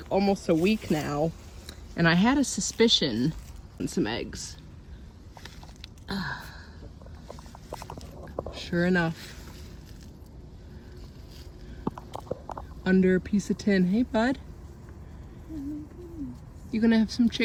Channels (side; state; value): both; identical; correlation 1.00